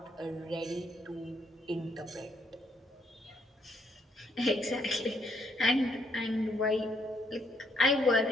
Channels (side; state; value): both; normal; correlation 0.72